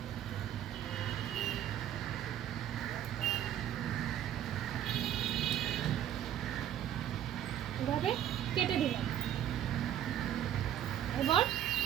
এভাবে কেটে দিলাম। এবার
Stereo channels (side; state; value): left; quieter; 10.9 dB